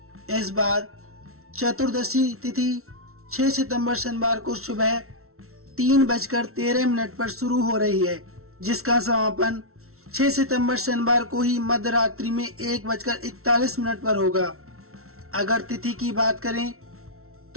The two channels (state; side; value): late; left; 0.63 ms